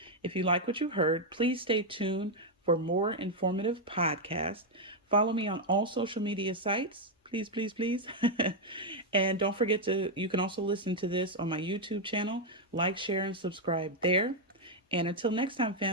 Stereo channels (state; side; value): normal; both; correlation 0.00